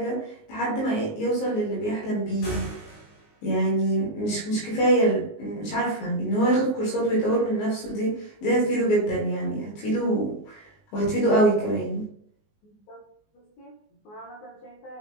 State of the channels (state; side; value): late; right; 19 ms